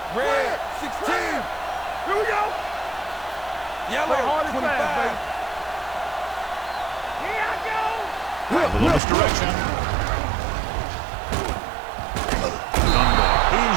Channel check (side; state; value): left; drops out; at 9.0 s